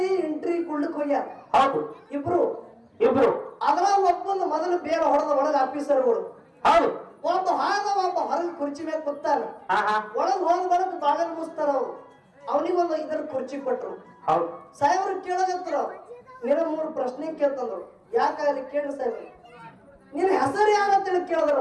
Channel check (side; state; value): both; identical; correlation 1.00